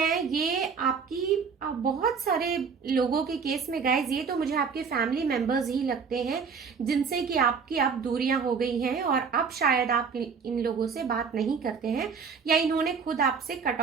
ये आपकी बहुत सारे लोगों के केस में गाइज ये तो मुझे आपके फैमिली मेंबर्स ही लगते हैं जिनसे कि आपकी अब दूरियां हो गई हैं और अब शायद आप इन लोगों से बात नहीं करते हैं या इन्होंने खुद आपसे कट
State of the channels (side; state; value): left; quieter; 5.9 dB